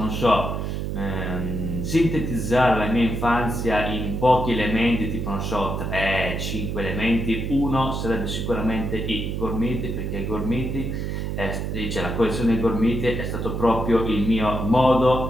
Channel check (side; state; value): right; noise; hum, 3 dB below the sound